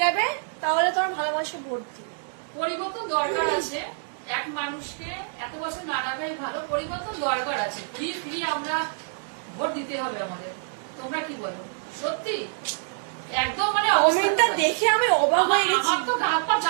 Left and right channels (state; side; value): silent; left; digital silence